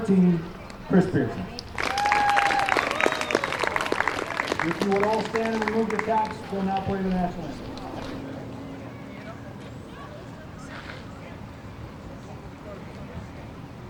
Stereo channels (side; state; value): both; identical; correlation 1.00